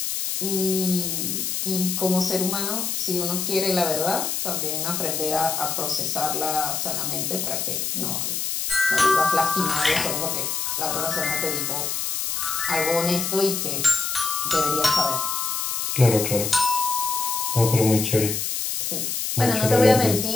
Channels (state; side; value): noise; left; hiss, 1 dB below the sound